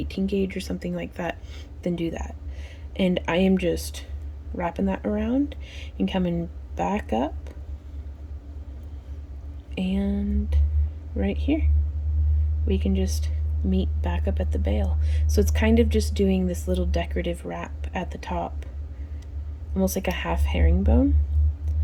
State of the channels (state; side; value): identical; both; correlation 1.00